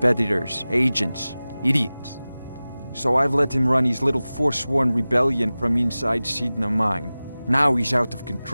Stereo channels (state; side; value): inverted; both; correlation -0.97